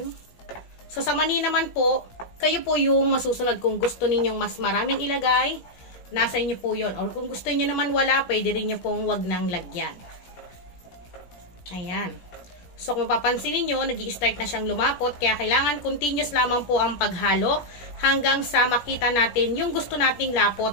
So, sa mani naman po, kayo po yung masusunod kung gusto ninyong mas maraming ilagay, nasa inyo po yun. Or kung gusto niyo naman wala, pwede rin nyo pong wag nang lagyan. Ayan. So kung mapapansin niyo, nag-i-start na siyang lumapot, kaya kailangan continuous lamang po ang paghalo hanggang sa makita natin yung gusto nating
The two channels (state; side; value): late; right; 17 ms